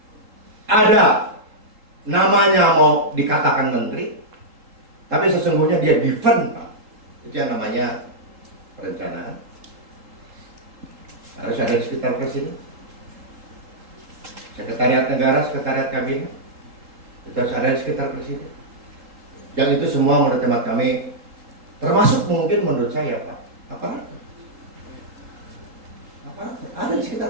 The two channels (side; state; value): left; late; 3.7 ms